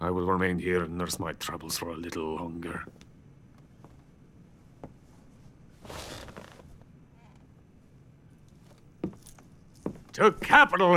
will remain here and nurse my troubles for a little longer. To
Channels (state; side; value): identical; both; correlation 1.00